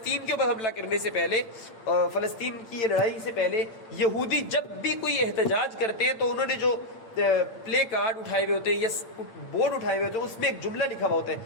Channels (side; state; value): right; late; 8.7 ms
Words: کے اوپر حملہ کرنے سے پہلے، فلسطین کی یہ لڑائی سے پہلے، یہودی جب بھی کوئی احتجاج کرتے ہیں تو انہوں نے جو پلے کارڈ اٹھائے ہوئے ہوتے ہیں یا بورڈ اٹھائے ہوئے ہوتے ہیں، اس میں ایک جملہ لکھا ہوا ہوتا ہے،